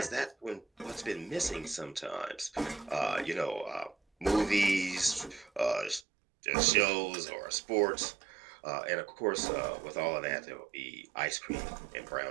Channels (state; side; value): drops out; left; at 6.0 s